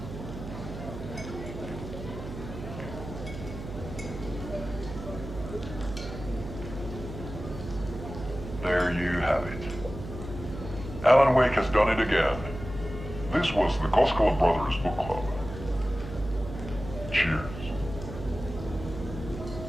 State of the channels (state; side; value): noise; right; hum, 10 dB below the sound